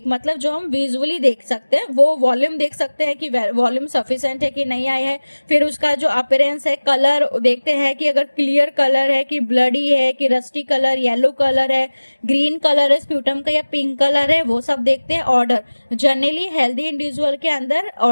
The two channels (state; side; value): inverted; both; correlation -1.00